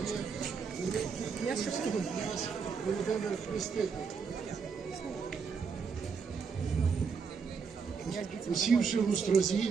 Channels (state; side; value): quieter; left; 5.7 dB